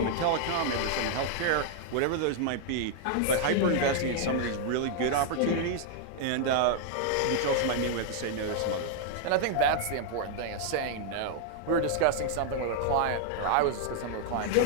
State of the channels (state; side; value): different; both; correlation -0.01